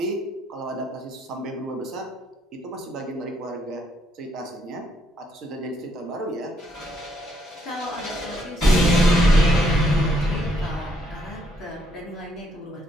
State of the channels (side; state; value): both; normal; correlation 0.73